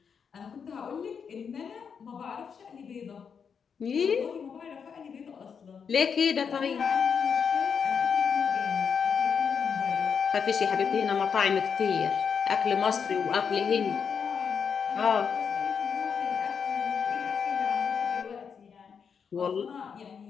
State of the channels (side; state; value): right; quieter; 6.6 dB